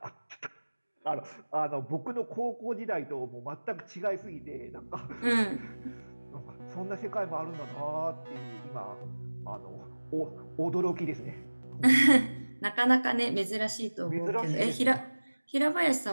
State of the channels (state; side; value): inverted; both; correlation -1.00